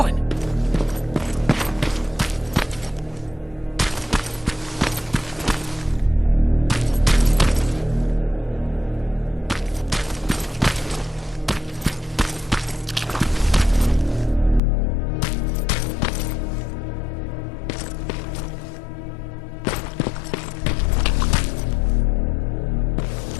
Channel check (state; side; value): drops out; right; at 14.6 s